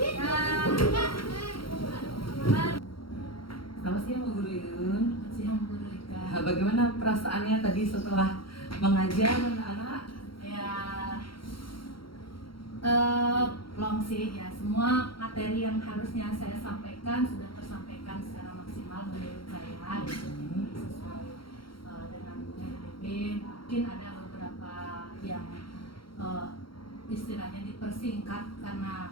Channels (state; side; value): late; right; 0.74 ms